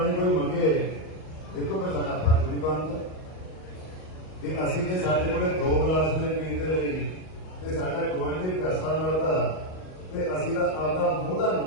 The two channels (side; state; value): right; late; 38 ms